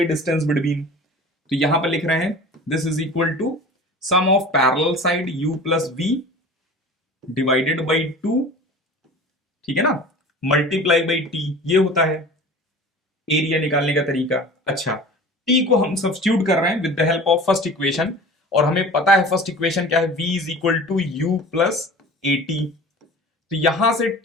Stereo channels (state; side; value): normal; both; correlation 0.40